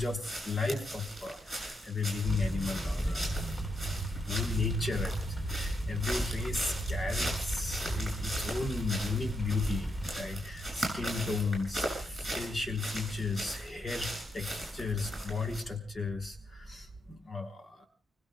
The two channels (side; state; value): both; normal; correlation 0.81